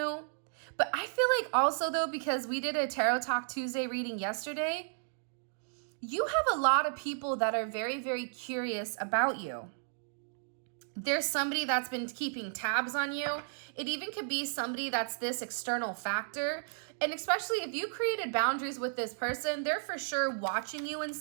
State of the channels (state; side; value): silent; left; digital silence